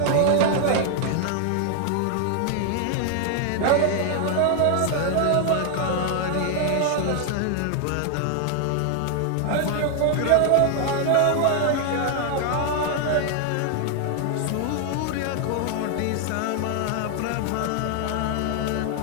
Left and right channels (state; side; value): different; both; correlation 0.00